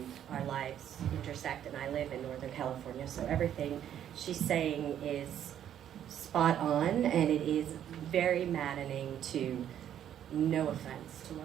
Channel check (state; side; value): quieter; left; 10.3 dB